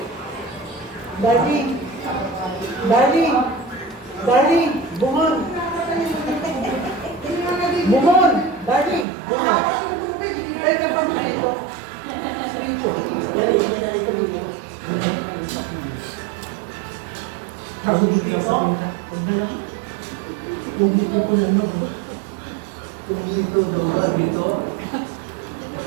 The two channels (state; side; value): drops out; left; at 9.1 s